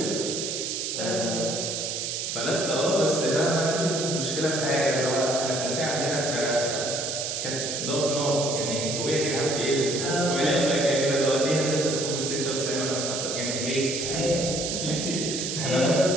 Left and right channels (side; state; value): right; noise; hiss, 3 dB below the sound